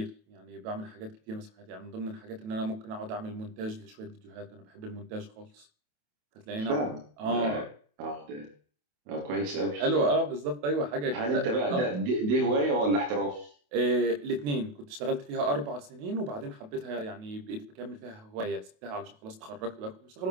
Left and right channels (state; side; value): late; left; 28 ms